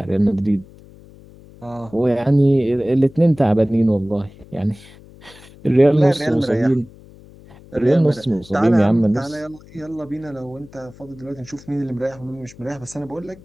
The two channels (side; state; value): left; noise; hum, 22 dB below the sound